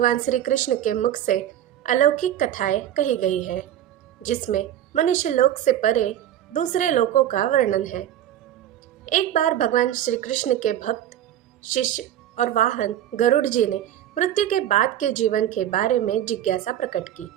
श्री कृष्ण के मुख से अलौकिक कथाएं कही गई है, जिसमें मनुष्य लोक से परे दूसरे लोकों का वर्णन है। एक बार भगवान श्री कृष्ण के भक्त, शिष्य और वाहन गरुड़ जी ने मृत्यु के बाद के जीवन के बारे में जिज्ञासा प्रकट की।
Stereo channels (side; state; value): left; quieter; 11.7 dB